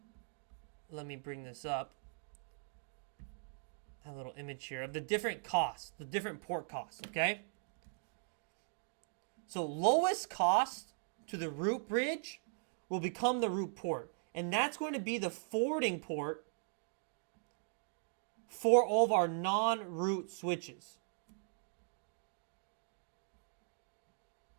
let me bring this up, a little image here of the different costs, the different port costs, okay? So lowest cost to the root bridge will become the root port. And that's going to be the forwarding port for all of our non-root switches.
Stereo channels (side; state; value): left; silent; digital silence